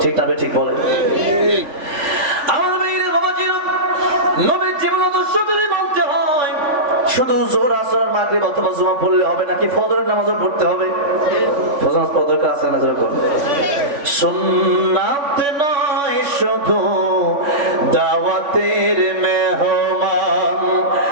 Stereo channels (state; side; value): late; left; 3.5 ms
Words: ঠিক না? ঠিক বলে আমার ভাইরা বাবাজিরা, নবীর জীবন আদর্শ যদি মানতে হয়, শুধু জোহর আসর মাগরিব অথবা জুমা পড়লে হবে নাকি? ফজরের নামাজও পড়তে হবে। ফজর নামাজ পড়ার দরকার আছে না? যেরকম সুন্নাত নয় শুধু দাওয়াতের মেহমান,